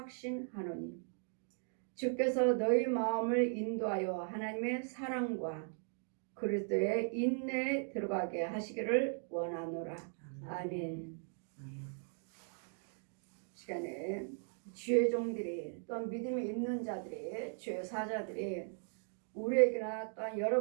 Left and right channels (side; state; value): left; silent; 52 dB below the other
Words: 주께서 너희 마음을 인도하여 하나님의 사랑과 그리스도의 인내에 들어가게 하시기를 원하노라. 아멘. 시간에 주의 종들이 또한 믿음이 있는 자들이 주의 사자들이 우리에게나 또한